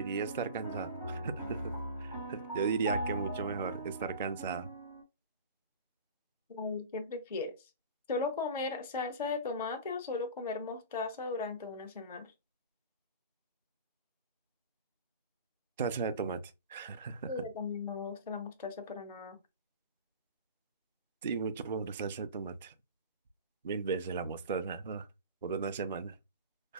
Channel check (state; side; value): inverted; both; correlation -0.36